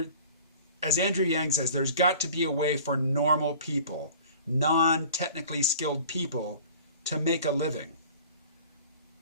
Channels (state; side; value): inverted; both; correlation -0.45